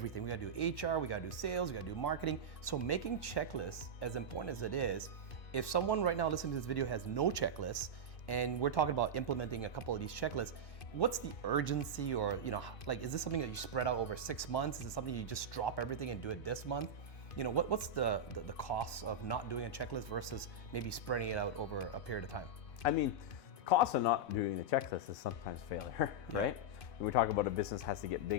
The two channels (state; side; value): late; right; 2.5 ms